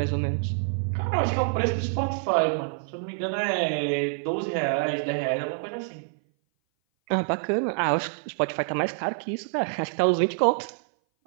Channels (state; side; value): silent; left; 58 dB below the other